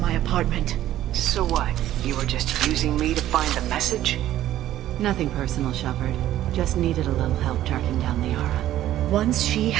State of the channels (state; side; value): quieter; left; 13.1 dB